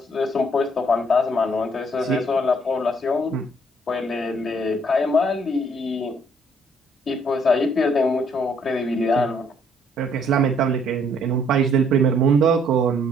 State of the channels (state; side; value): normal; both; correlation 0.65